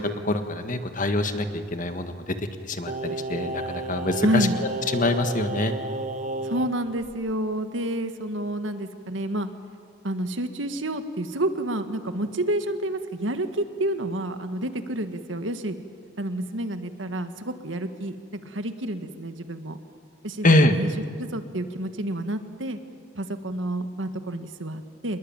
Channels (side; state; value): both; normal; correlation 0.46